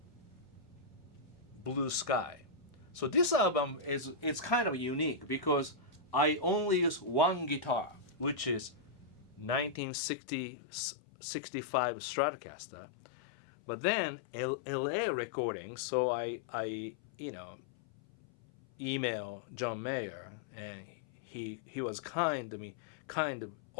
Blue Sky. So this album it's kind of unique because I only use one guitar, which is 1965 Stratocaster. But then LA recording, so I email John Mayer, and he was kind to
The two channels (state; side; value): drops out; right; at 9.8 s